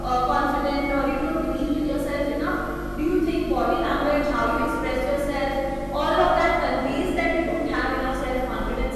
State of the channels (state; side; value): identical; both; correlation 1.00